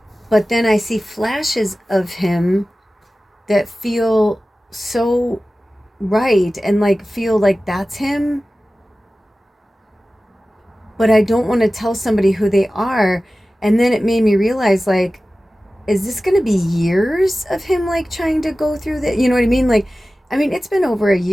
But then I see flashes of him that feel so right and like feel like that's him. But I don't want to tell somebody who they are. And then it made me realize, like, is this going to be years of him like trying to go through that? You know what I mean? Like, I mean, it's been over a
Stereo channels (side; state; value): both; normal; correlation 0.96